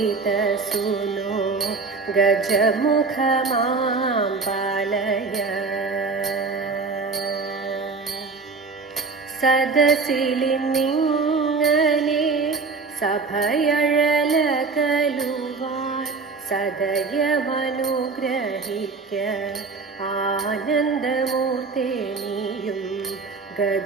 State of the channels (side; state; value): left; quieter; 4.4 dB